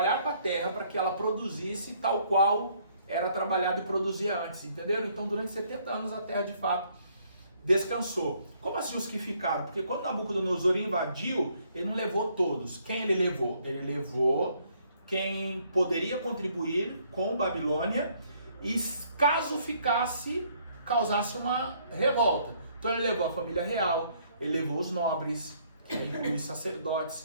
com a terra para que ela produzisse tal qual era trabalhado e produzia antes, entenderam? Então durante 70 anos a terra de fato descansou. Como assim os que ficaram? Porque quando Nabucodonosor invadiu, ele não levou todos. Quem ele levou? Ele levou quem poderia contribuir com Babilônia e caso ficasse, causasse uma revolta. Então ele levou a família real, ele levou os nobres, os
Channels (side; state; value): both; inverted; correlation -0.66